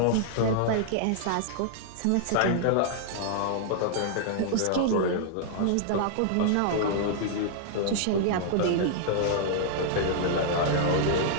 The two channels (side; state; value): both; different; correlation -0.01